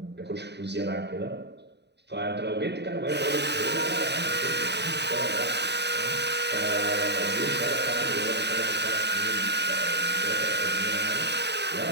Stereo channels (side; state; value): left; late; 0.50 ms